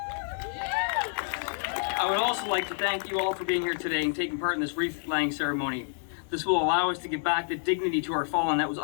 I would also like to thank you all for being here today and taking part in this wreath-laying ceremony. This will allow us to give back the dignity to our fallen that was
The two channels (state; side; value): silent; right; digital silence